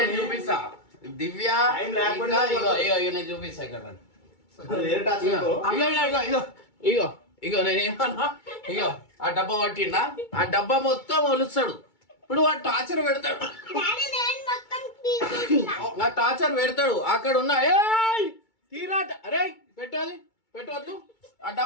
చూపిస్తా దివ్య Time లేకుండా ఇగో నేను చూపిస్తా ఇక్కడ అది వేరే టాచ్ ఇగో ఇగో ఇగో నేనేమన్నా ఇగో ఆ డబ్బా పట్టిండా ఆ డబ్బా మొత్తం ఒలుస్తాడు ఇప్పుడు వాడు టార్చర్ పెడతాడు నా టార్చర్ పెడతాడు అక్కడ ఉన్న ఏయ్ తీరాట అరే పెట్టు అది పెట్టవద్దు ఆ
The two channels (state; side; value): late; right; 2.3 ms